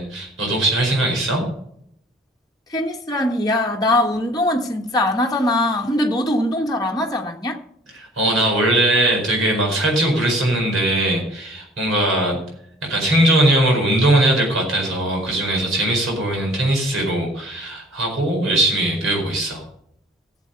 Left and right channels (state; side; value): normal; both; correlation 0.52